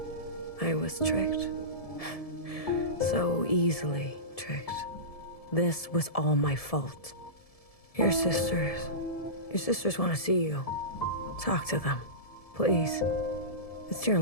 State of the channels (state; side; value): late; right; 1.7 ms